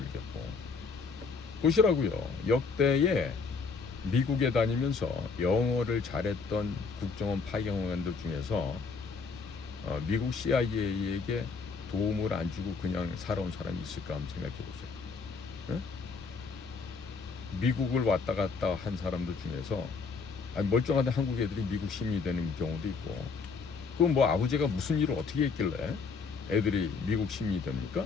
보시라고요. 역대에 미국에 다니면서 영어를 잘했던 국정원 파견원들 중에서 미국 CIA에게 도움을 안 주고 그냥 살아온 사람이 있을까 한번 생각해 보세요. 미국을 왔다 갔다 한 사람들 중에서 멀쩡한데 한국 애들이 미국 시민이 되는 경우도 있고, 그럼 뭐 아버지가 무슨 일을 어떻게 했길래 애들이 미국 시민이 됩니까?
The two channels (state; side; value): quieter; right; 4.9 dB